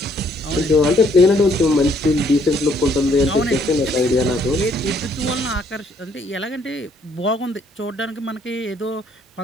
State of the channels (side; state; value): both; normal; correlation 0.66